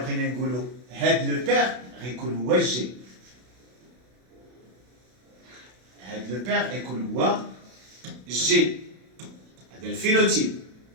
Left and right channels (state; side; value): late; left; 32 ms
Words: بغينا نقولوا هاد لو بير غيكون هو جي، هاد لو بير غيكون هو G هذا الفينوتيب